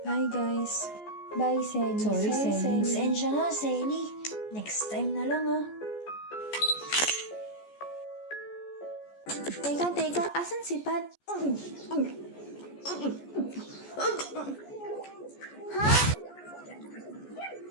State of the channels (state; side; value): late; right; 14 ms